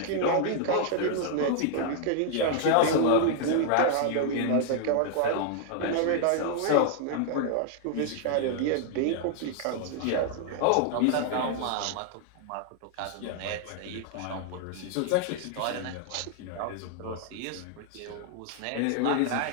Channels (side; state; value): both; different; correlation 0.00